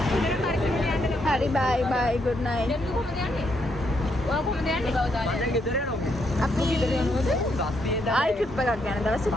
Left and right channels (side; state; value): both; normal; correlation 0.76